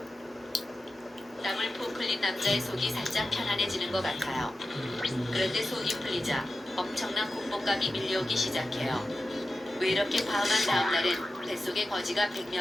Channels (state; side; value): normal; both; correlation 0.93